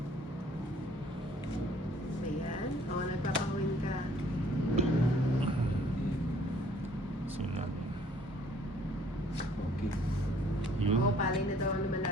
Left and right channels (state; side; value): normal; both; correlation 0.59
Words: Ayan. O, nagpapawin ka. Sino? Okay. Yun. Oo, palay na daw ang